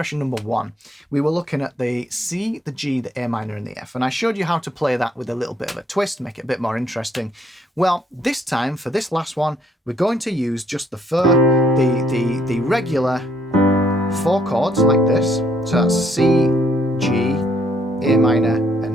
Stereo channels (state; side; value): normal; both; correlation 0.68